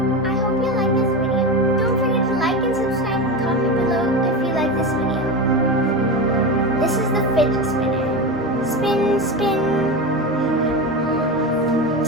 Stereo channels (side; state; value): both; normal; correlation 0.21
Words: I hope you like this video. Don't forget to like and subscribe and comment below if you like this video. This is the fidget spinner. Spin, spin.